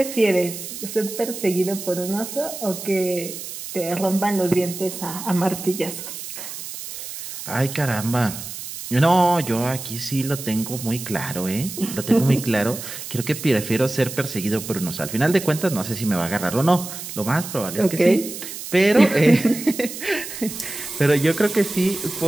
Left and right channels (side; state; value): right; noise; hiss, 9 dB below the sound